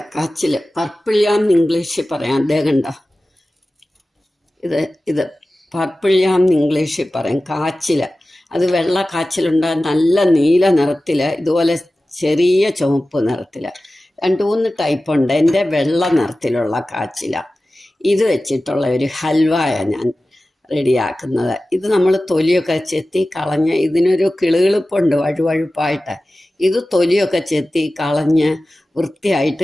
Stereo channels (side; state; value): both; normal; correlation 0.96